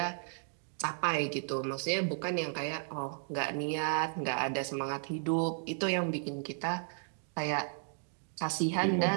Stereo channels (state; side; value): silent; left; 55 dB below the other